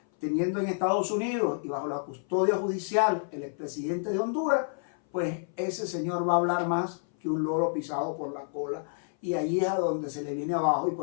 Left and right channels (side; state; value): right; silent; 57 dB below the other